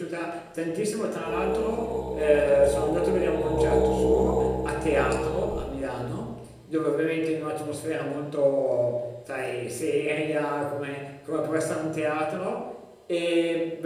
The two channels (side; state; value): both; identical; correlation 1.00